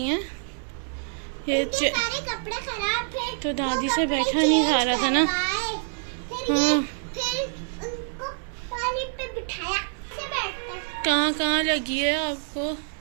हैं ये सारे कपड़े खराब थे, तो दादी से बैठा नहीं जा रहा था ना। हाँ फिर उनको पानी पे बिठाया। कहाँ लगी है आपको।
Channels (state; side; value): silent; left; 61 dB below the other